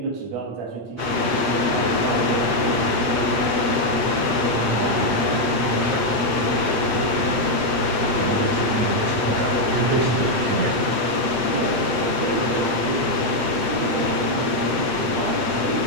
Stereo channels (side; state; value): left; late; 7.8 ms